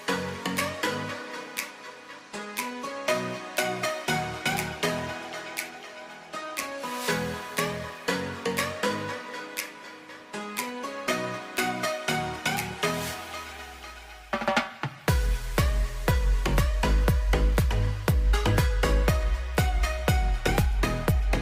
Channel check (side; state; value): both; identical; correlation 1.00